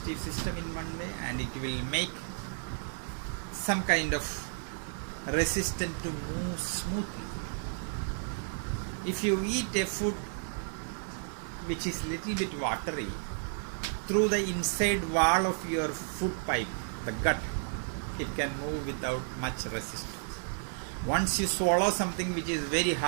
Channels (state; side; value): silent; left; digital silence